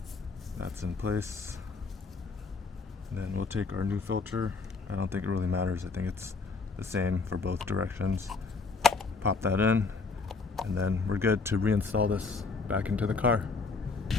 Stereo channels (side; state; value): right; quieter; 4.3 dB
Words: that's in place. And then we'll take our new filter. I don't think it really matters. I think it's the same for both directions. Pop that in, and then we're good to reinstall this back into the car.